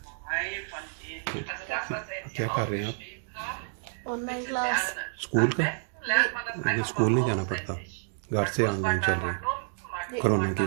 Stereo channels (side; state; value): left; silent; digital silence